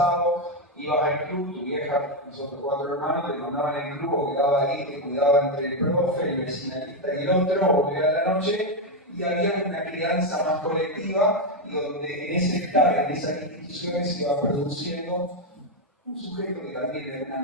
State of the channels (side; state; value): both; normal; correlation 0.05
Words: ibas al club, tu vieja, nosotros 4 hermanos, te mandaban al club o quedaba ahí, te cuidaba entre el profe, el vecinalista y el otro, o volvía a la noche, y había una crianza más colectiva, y donde en ese estar, en esas instituciones, se iba produciendo un sujeto que también de alguna